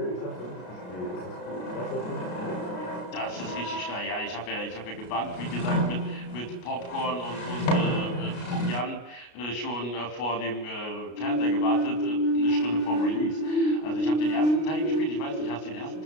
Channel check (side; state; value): right; late; 33 ms